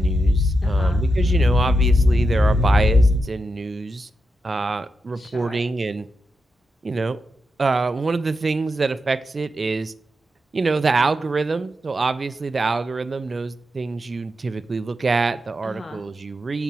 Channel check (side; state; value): both; normal; correlation 0.87